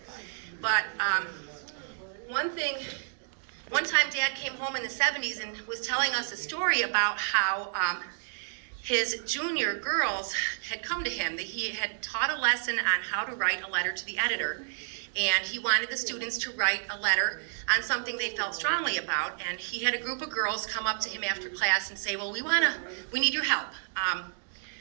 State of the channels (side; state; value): left; silent; digital silence